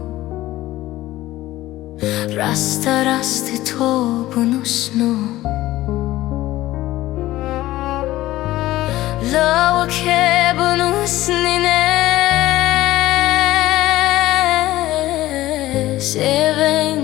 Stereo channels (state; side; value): quieter; right; 16.2 dB